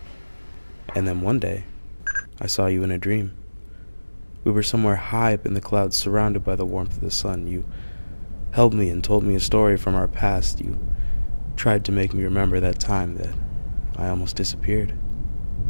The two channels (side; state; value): both; inverted; correlation -1.00